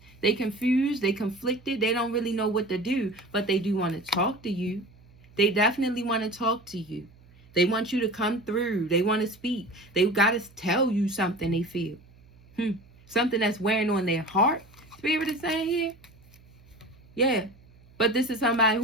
They confused. They conflicted. They don't really know what to do. But they do want to talk to you. They definitely want to talk to you. They want you to come through. They want to speak. They've got to tell you something they feel. Something that's wearing on their heart. Spirit is saying here. Yeah. But this is somebody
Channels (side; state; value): right; noise; hum, 26 dB below the sound